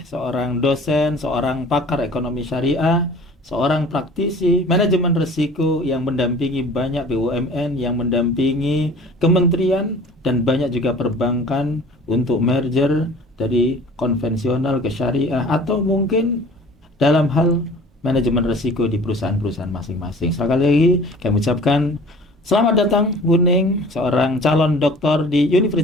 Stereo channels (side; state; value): both; normal; correlation 0.46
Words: seorang dosen, seorang pakar ekonomi syariah, seorang praktisi manajemen risiko yang mendampingi banyak BUMN, yang mendampingi kementerian dan banyak juga perbankan untuk merger dari konvensional ke syariah atau mungkin dalam hal manajemen risiko di perusahaan-perusahaan masing-masing. Sekali lagi kami ucapkan selamat datang Bu Ning, seorang calon doktor di